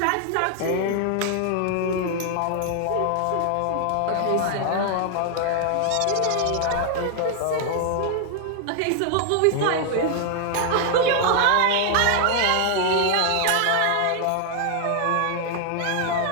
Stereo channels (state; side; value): different; both; correlation 0.00